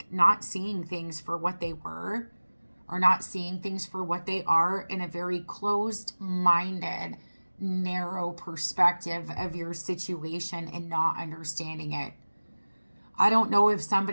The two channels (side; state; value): both; inverted; correlation -1.00